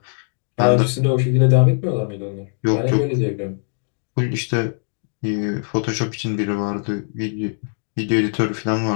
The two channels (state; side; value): silent; right; digital silence